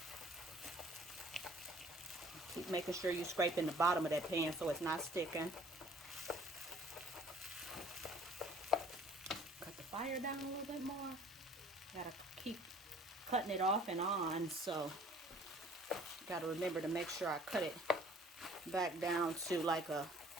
Keep making sure you scrape in the bottom of that pan so it's not sticking. Cut the fire down a little bit more. Gotta keep cutting it off and on, so gotta remember to make sure I cut it back down to like a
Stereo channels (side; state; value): both; normal; correlation 0.54